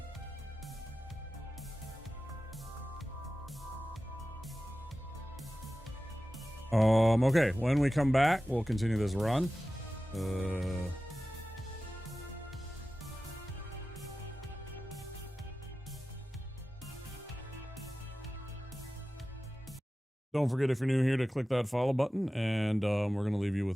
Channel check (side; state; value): both; normal; correlation 0.95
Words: Okay, when we come back, we'll continue this run. Don't forget, if you're new here, to click that follow button, and we're going to leave you